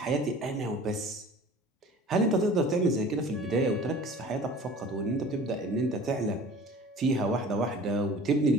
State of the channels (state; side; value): normal; both; correlation 0.44